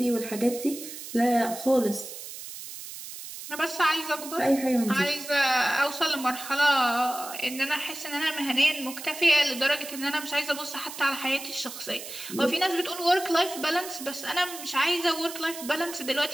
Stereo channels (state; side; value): noise; right; hiss, 11 dB below the sound